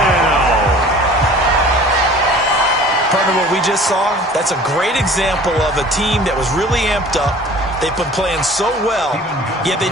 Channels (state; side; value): normal; both; correlation 0.47